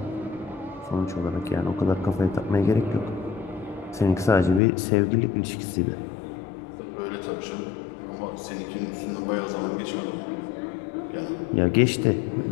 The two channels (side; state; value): right; drops out; at 4.6 s